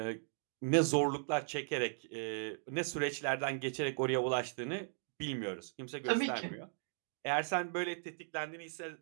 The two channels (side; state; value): left; silent; digital silence